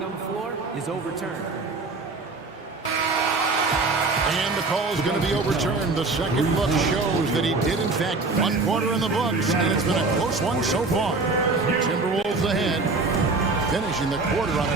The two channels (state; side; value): quieter; left; 3.7 dB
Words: on the floor is overturned. And the call is going to be overturned. The second look shows that he did, in fact, 1 quarter in the books, and it's been a close one so far. Timberwolves ahead, finishing the quarter on